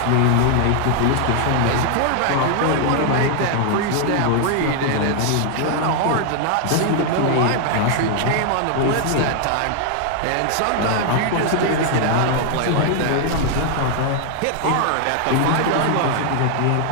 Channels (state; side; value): different; both; correlation 0.00